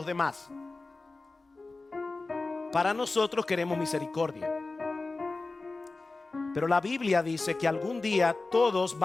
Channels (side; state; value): right; quieter; 3.5 dB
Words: demás. Para nosotros queremos misericordia. Pero la Biblia dice que algún día todos